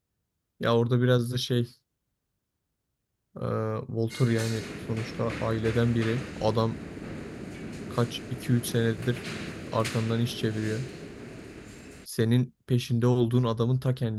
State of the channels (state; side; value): identical; both; correlation 1.00